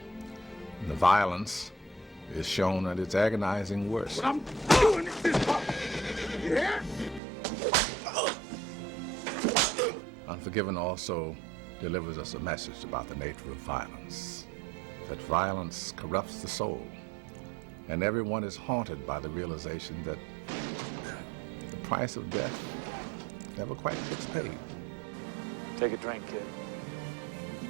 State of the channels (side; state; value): left; drops out; at 7.2 s